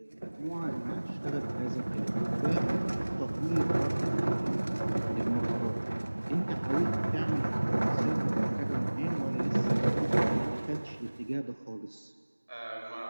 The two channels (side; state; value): both; inverted; correlation -1.00